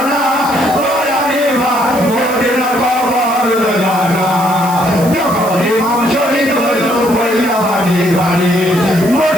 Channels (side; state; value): right; noise; hiss, 13 dB below the sound